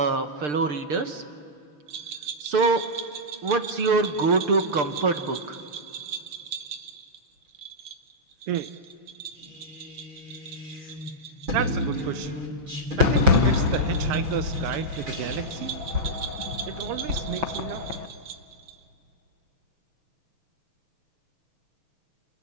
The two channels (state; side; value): late; left; 6.7 ms